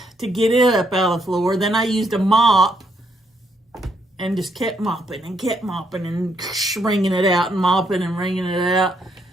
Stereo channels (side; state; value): both; normal; correlation 0.74